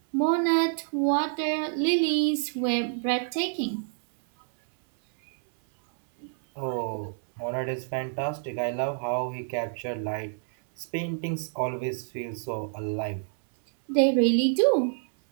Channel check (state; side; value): silent; left; 60 dB below the other